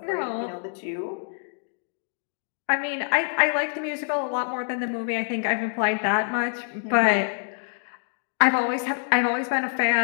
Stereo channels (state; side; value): silent; right; 57 dB below the other